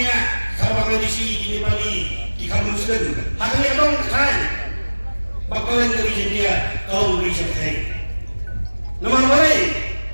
sabang edisi ini bali di kamu muslim. Haknya dong kan. Bakalan dari dia kau beri saya. Nama boleh,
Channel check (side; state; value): both; inverted; correlation -1.00